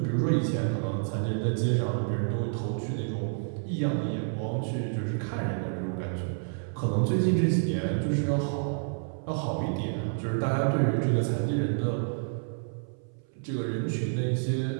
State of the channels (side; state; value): left; silent; 59 dB below the other